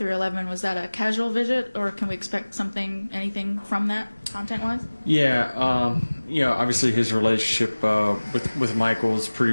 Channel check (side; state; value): both; inverted; correlation -1.00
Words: Was that a casual visit, or can we expect anything from that content-wise? Yeah, obviously his relationship with Michael is